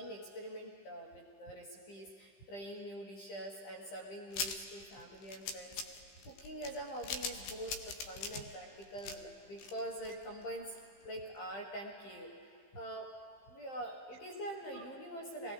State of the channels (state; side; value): late; right; 15 ms